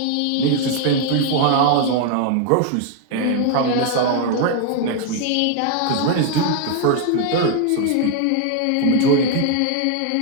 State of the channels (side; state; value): both; different; correlation 0.00